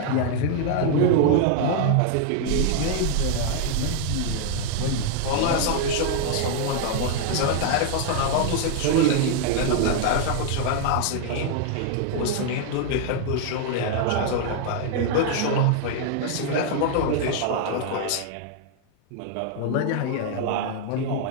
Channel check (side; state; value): both; different; correlation 0.00